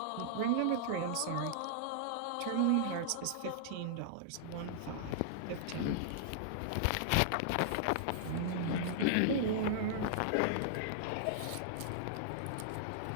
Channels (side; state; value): both; different; correlation -0.01